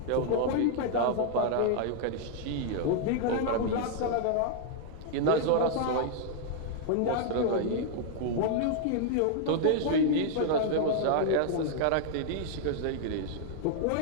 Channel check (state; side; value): different; both; correlation -0.01